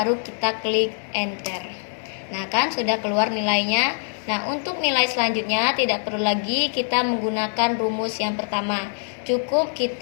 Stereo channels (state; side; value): silent; right; digital silence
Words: kita klik enter. Nah, kan sudah keluar nilainya. Nah, untuk nilai selanjutnya tidak perlu lagi kita menggunakan rumus yang pertama. Cukup